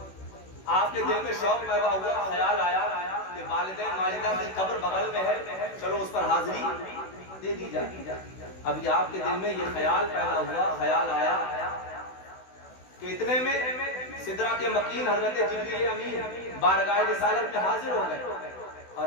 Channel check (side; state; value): right; late; 16 ms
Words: آپ کے دل میں شوق پیدا ہوا، خیال آیا کہ والدہ ماجدہ کی قبر بغل میں ہے، چلو اس پر حاضری دے دی جائے. ابھی آپ کے دل میں یہ خیال پیدا ہوا، خیال آیا کہ اتنے میں سدرہ کے مکین حضرت جبریل امین بارگاہ رسالت میں حاضر ہو گئے